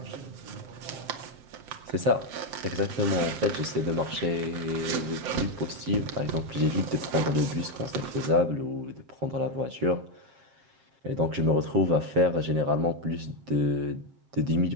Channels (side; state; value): left; late; 7.5 ms